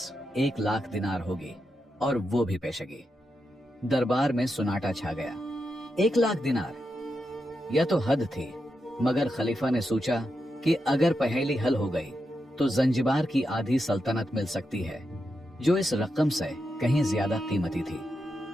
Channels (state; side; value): normal; both; correlation 0.86